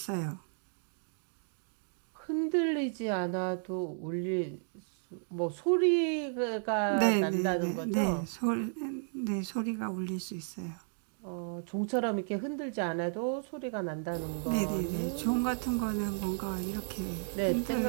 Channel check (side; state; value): left; silent; digital silence